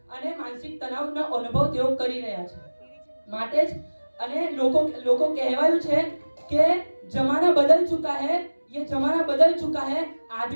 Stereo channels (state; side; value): inverted; both; correlation -1.00